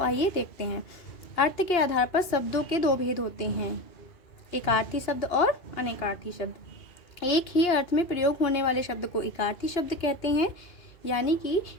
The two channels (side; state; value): right; late; 2.9 ms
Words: देखते हैं। अर्थ के आधार पर शब्दों के दो भेद होते हैं, एकार्थी शब्द और अनेकार्थी शब्द। एक ही अर्थ में प्रयोग होने वाले शब्द को एकार्थी शब्द कहते हैं, यानी कि